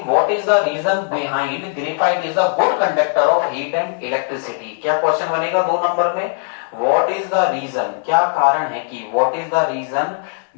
what is the reason behind graphite is the good conductor of heat and electricity. क्या क्वेश्चन बनेगा 2 नंबर में, व्हाट इज द रीजन, क्या कारण है कि what is the reason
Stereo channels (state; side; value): silent; right; digital silence